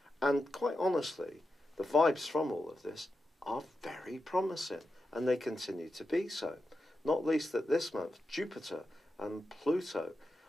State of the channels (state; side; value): normal; both; correlation 0.89